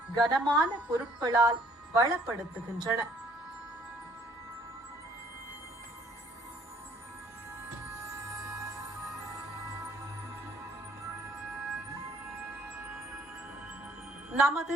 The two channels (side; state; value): both; normal; correlation 0.61